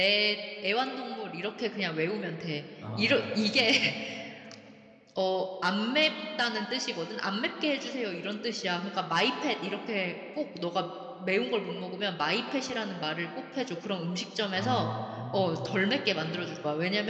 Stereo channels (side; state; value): both; identical; correlation 1.00